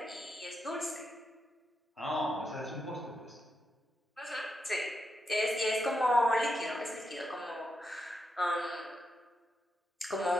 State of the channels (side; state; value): both; normal; correlation 0.84